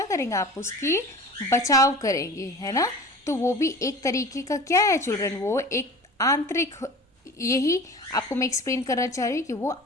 करेंगे? आप उसकी बचाव करेंगे, है ना? तो वो भी एक तरीके का क्या है चिल्ड्रन? वो एक आंतरिक, यही आपको मैं एक्सप्लेन करना चाह रही हूँ कि वो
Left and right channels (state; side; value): normal; both; correlation 0.39